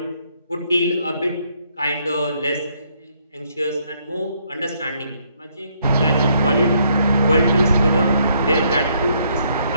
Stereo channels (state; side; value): inverted; both; correlation -0.71